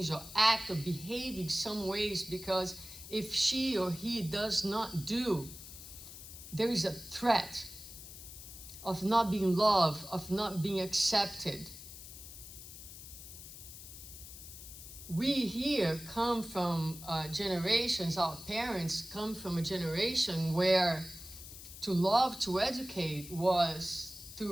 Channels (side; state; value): left; noise; hiss, 14 dB below the sound